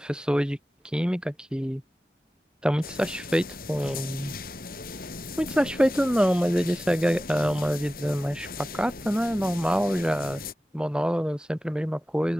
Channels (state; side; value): normal; both; correlation 0.95